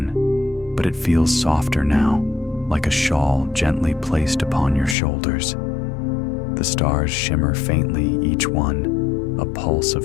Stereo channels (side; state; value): right; drops out; at 5.0 s